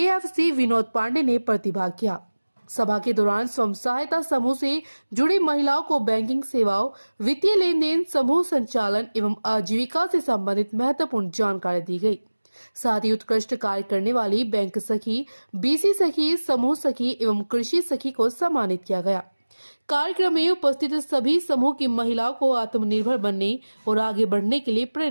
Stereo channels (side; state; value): both; inverted; correlation -1.00